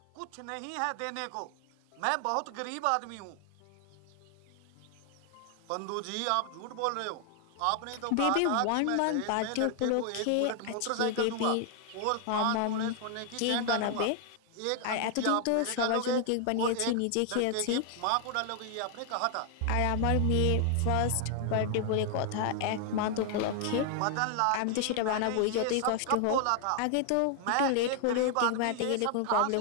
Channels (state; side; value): different; both; correlation 0.00